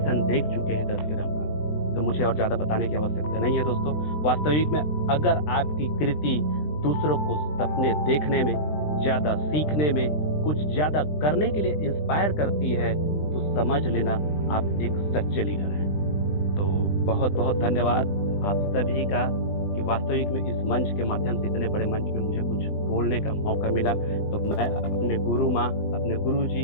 देख चुके हैं 10 के दम का, तो मुझे और ज्यादा बताने की आवश्यकता नहीं है दोस्तों। वास्तविक में अगर आपकी कृति दूसरों को सपने देखने में, ज्यादा सीखने में, कुछ ज्यादा करने के लिए इंस्पायर करती है, तो समझ लेना आप एक सच्चे लीडर हैं। तो बहुत बहुत धन्यवाद आप सभी का कि वास्तविक में इस मंच के माध्यम से, इतने बड़े मंच में मुझे कुछ बोलने का मौका मिला। तो मैं अपने गुरु माँ, अपने गुरु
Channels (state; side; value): late; right; 20 ms